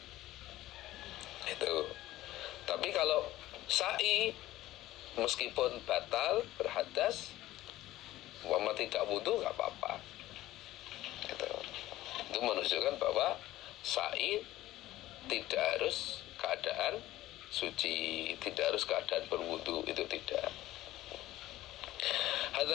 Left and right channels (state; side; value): quieter; right; 15.7 dB